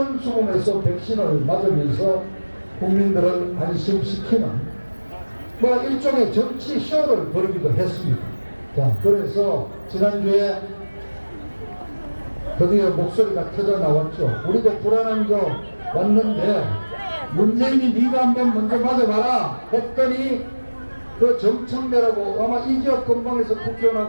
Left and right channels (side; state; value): both; inverted; correlation -1.00